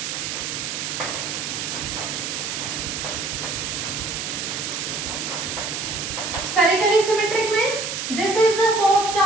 Spherically symmetric means this is the source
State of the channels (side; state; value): right; noise; hiss, 3 dB below the sound